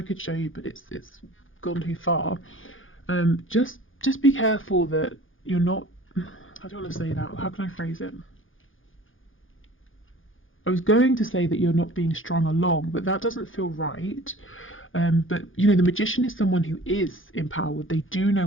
could show you, but it's gone too far. Just be careful that you're not. I don't want to say that. How can I phrase it? I was going to say that you're not being strung along, but that doesn't feel right. But you know, the Magician is someone who is empowered. They do know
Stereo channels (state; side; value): late; right; 0.58 ms